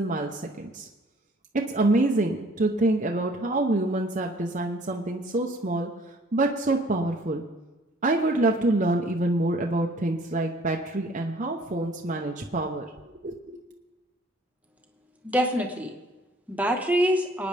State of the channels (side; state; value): both; normal; correlation 0.57